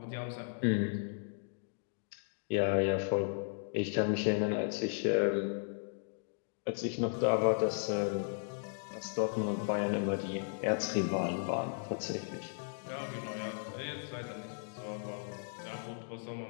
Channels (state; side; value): silent; right; digital silence